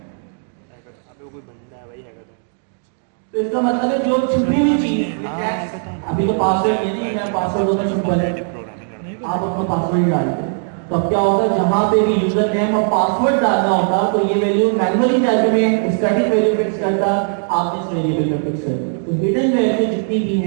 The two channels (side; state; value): left; silent; 59 dB below the other